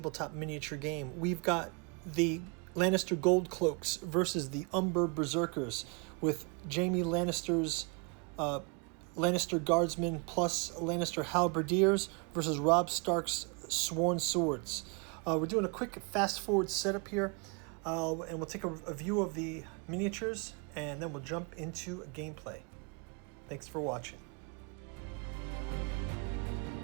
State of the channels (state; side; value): quieter; left; 34.1 dB